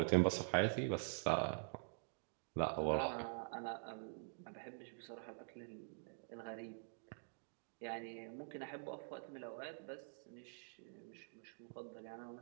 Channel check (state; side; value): silent; left; digital silence